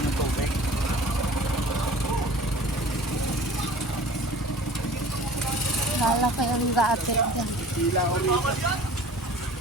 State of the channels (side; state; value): both; normal; correlation 0.45